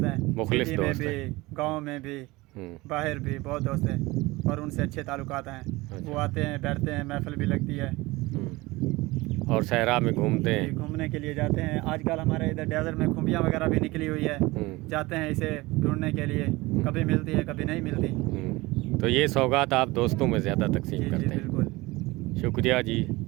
हैं, मुखलिस सिटी में दोस्त भी, गांव में भी, बाहर भी बहुत दोस्त हैं और उनसे अच्छे ताल्लुकात हैं। अच्छा। वो आते हैं, बैठते हैं, महफिल भी लगती है और सहरा में घूमते हैं, घूमने के लिए जाते हैं। आजकल हमारे इधर डेजर्ट में खुम्बियाँ वगैरह भी निकली हुई है, जाते हैं इसे ढूंढने के लिए, कभी मिलती है कभी नहीं मिलती। तो ये सौगात आप दोस्तों में ज़्यादा तकसीम जी करते जी हैं। बिल्कुल। शुक्रिया जी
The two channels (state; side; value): quieter; left; 21.3 dB